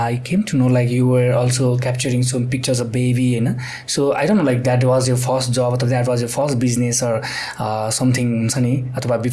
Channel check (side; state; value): both; identical; correlation 1.00